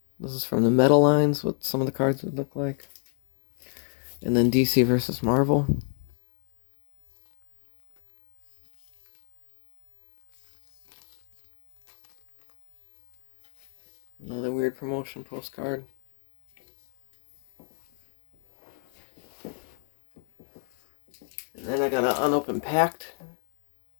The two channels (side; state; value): right; silent; 56 dB below the other